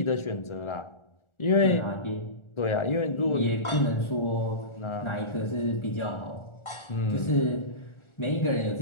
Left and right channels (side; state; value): right; late; 1.4 ms